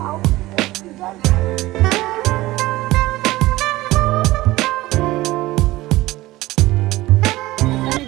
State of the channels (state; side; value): quieter; left; 18.1 dB